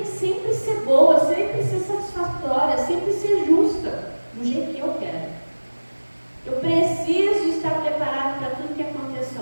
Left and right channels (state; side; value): inverted; both; correlation -1.00